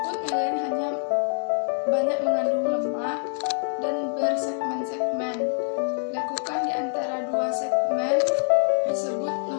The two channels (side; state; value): right; silent; 56 dB below the other